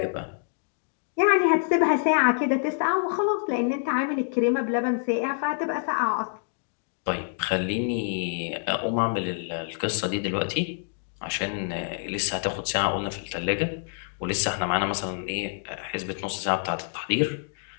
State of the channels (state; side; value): silent; right; 59 dB below the other